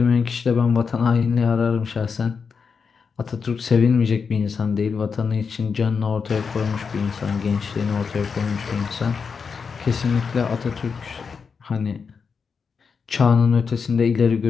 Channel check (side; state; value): right; quieter; 5.7 dB